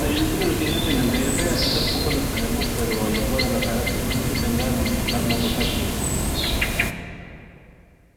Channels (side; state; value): both; identical; correlation 1.00